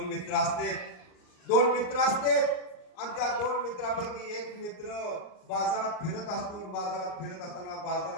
मित्र असते आणि त्या दोन मित्रापैकी एक मित्र बाजारात फिरत असतो. बाजारात फिरत असताना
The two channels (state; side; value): late; right; 39 ms